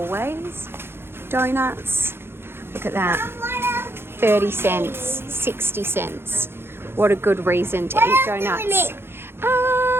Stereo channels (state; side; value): late; left; 0.11 ms